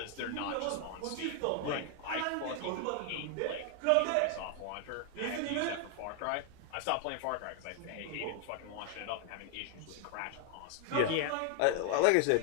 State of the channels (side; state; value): both; different; correlation 0.00